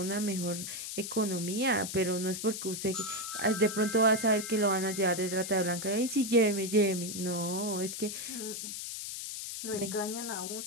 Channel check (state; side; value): noise; left; hiss, 6 dB below the sound